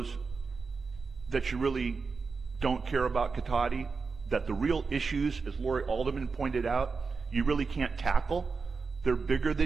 that you really don't care about Cotati, that the real issues, as Lori Alderman pointed out, you really can't tackle. They're bigger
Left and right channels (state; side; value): quieter; left; 4.7 dB